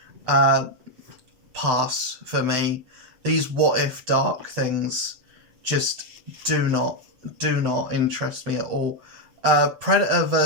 pass for me. These What If Dark things just do not interest me at all. Predator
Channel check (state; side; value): late; left; 7.9 ms